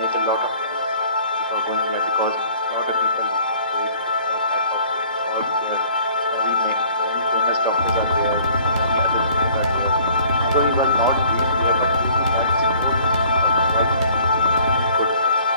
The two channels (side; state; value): both; inverted; correlation -0.54